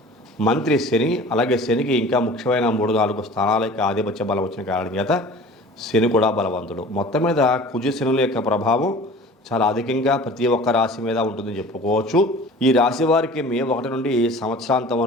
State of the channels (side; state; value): both; normal; correlation 0.43